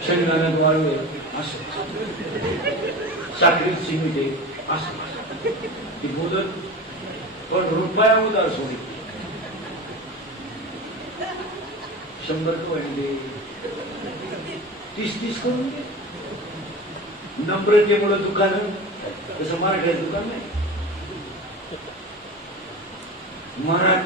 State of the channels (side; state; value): both; normal; correlation 0.30